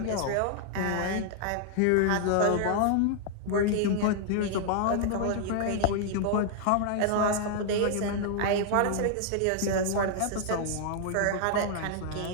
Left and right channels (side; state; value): both; different; correlation -0.01